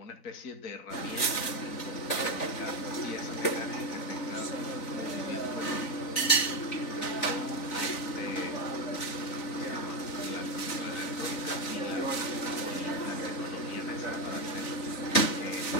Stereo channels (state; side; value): late; right; 3.9 ms